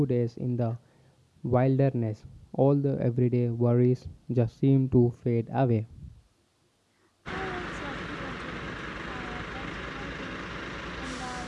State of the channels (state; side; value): identical; both; correlation 1.00